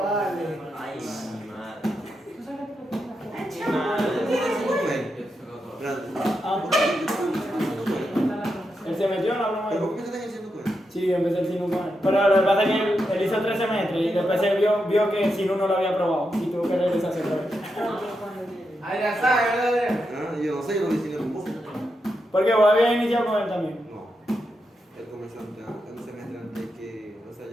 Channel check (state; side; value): normal; both; correlation 0.85